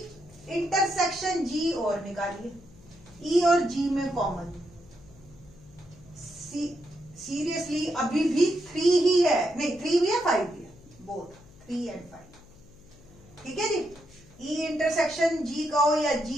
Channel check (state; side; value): noise; left; hum, 23 dB below the sound